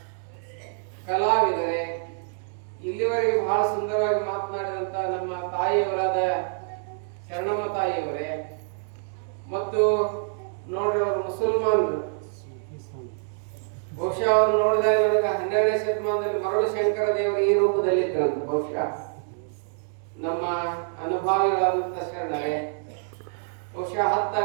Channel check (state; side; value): silent; left; digital silence